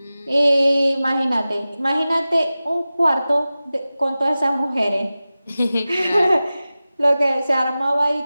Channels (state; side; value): inverted; both; correlation -0.96